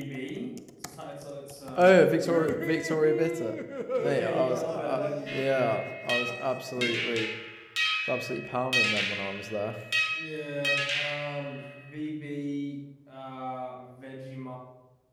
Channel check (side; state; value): both; identical; correlation 1.00